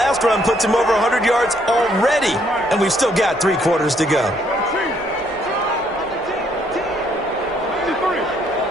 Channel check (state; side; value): normal; both; correlation 0.69